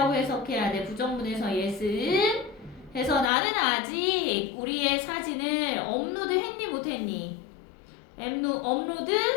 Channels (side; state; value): right; drops out; at 3.3 s